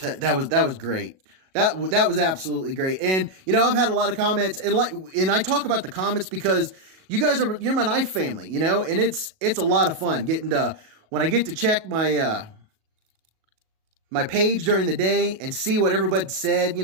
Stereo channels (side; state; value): left; late; 37 ms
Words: that was great. That was absolutely great. And, you know, I've had a lot of comments, and I talk about the comments because you guys you're my knife family, you know, and it's a lot of fun getting to, when I get to check my, my page during the day and see what everybody said, you